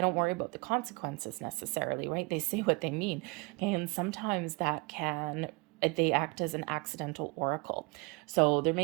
don't worry about the consequences necessarily, right? They say what they mean. And sometimes they act as an accidental oracle. So there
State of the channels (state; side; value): quieter; left; 27.6 dB